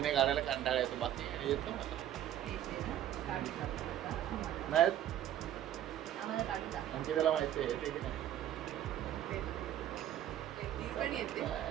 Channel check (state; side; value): quieter; left; 11.6 dB